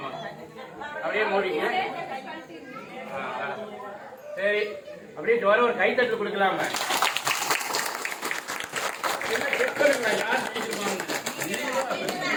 அப்படியே மூடிங்க சரி அப்படியே ஜோர ஒரு கைத்தட்டு கொடுக்கலாம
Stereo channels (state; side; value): identical; both; correlation 1.00